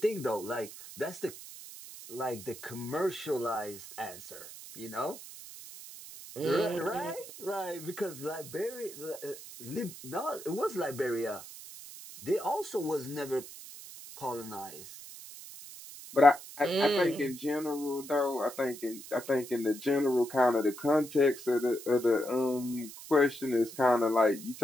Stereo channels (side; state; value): right; noise; hiss, 14 dB below the sound